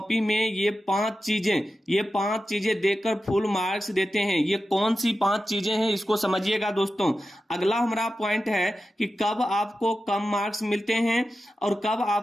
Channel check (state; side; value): normal; both; correlation 0.92